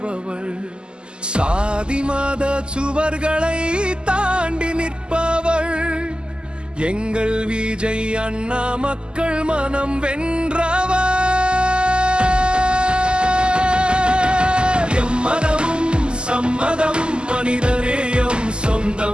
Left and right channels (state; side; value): late; left; 0.048 ms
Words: சாதி மத சுவர்களை தாண்டி நிற்பவள். எங்கள் விஜய் அண்ணா மக்கள் மனம் வென்றவர். எம்மதமும் சம்மதம், மனிதநேயம்